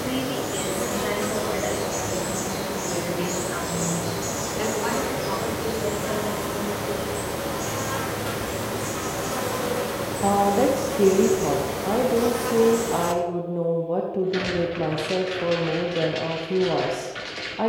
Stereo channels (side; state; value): both; identical; correlation 1.00